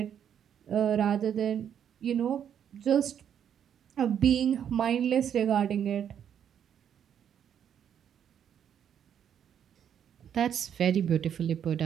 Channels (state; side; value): quieter; left; 8.9 dB